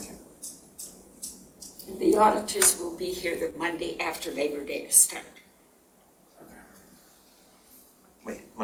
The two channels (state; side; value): identical; both; correlation 1.00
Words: you. The auditors will be here the Monday after Labor Day to start. Wait,